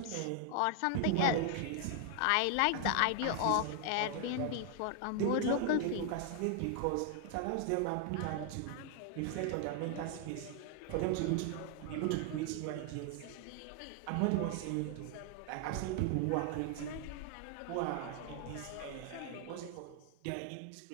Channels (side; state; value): both; different; correlation 0.00